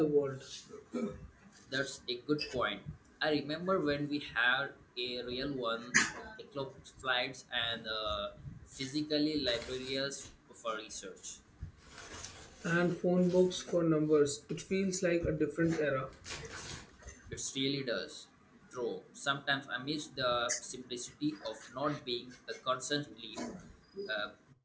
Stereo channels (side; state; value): both; identical; correlation 1.00